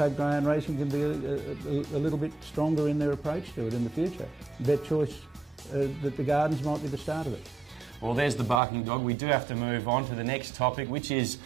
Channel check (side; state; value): left; drops out; at 8.6 s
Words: greyhound racing can be a little bit stronger in their approach to it in the future. BetChoice, that the Gardens might be the start of it. Well, there's the barking dog. We do have to move on to the next topic, which is